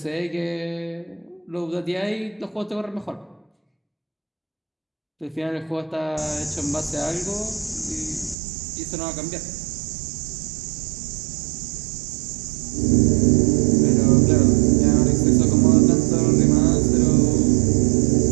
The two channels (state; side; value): drops out; left; at 8.3 s